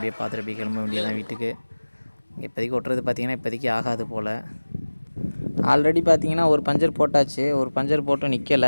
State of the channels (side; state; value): both; inverted; correlation -1.00